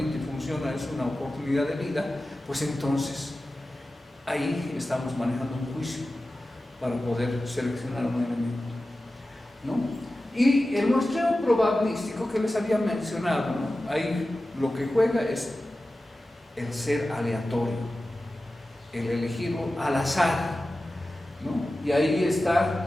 y funciona, es una oportunidad de vida, pues entonces ahí estamos manejando un juicio para poder seleccionar un elemento, ¿no? Y el muestreo probabilístico que les había mencionado, ¿no? Ahí lo que juega es el ser aleatorio, el elegirlo al azar, ¿no? Y ahí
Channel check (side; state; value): both; normal; correlation 0.95